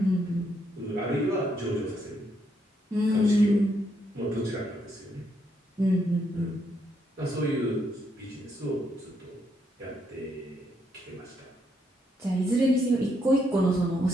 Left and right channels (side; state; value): both; normal; correlation 0.76